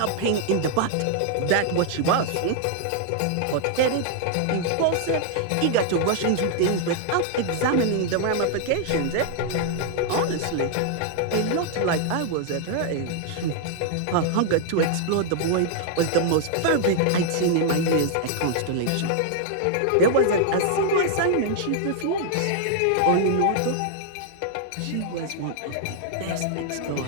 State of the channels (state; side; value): different; both; correlation -0.01